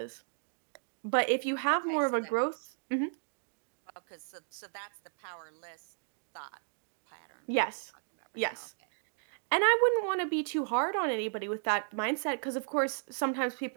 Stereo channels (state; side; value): silent; left; digital silence